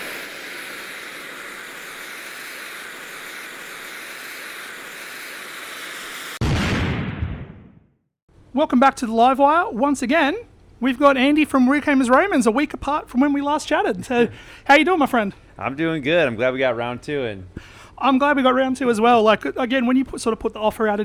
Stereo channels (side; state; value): both; identical; correlation 1.00